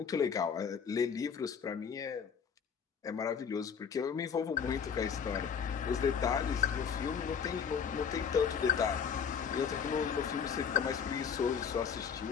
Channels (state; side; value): quieter; right; 6.9 dB